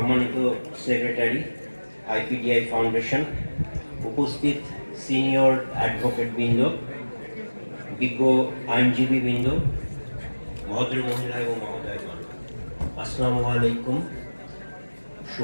সেক্রেটারি আইপিডিআই ফাউন্ডেশন, উপস্থিত সিনিয়র অ্যাডভোকেট বৃন্দ, বিজ্ঞ আইনজীবী বৃন্দ, ভদ্র মহিলা এবং মহোদয়গণ, আসসালামু আলাইকুম,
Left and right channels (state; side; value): inverted; both; correlation -1.00